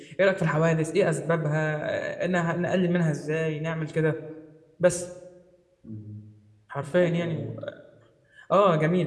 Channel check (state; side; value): identical; both; correlation 1.00